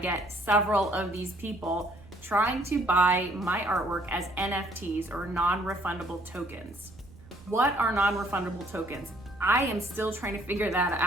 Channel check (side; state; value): right; noise; rumble, 21 dB below the sound